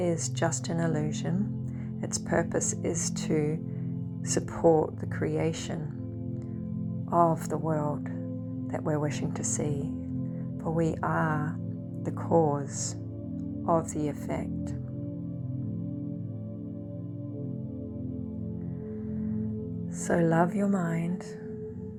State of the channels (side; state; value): both; identical; correlation 1.00